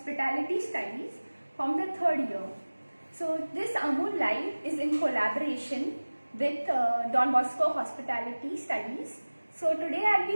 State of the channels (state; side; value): inverted; both; correlation -1.00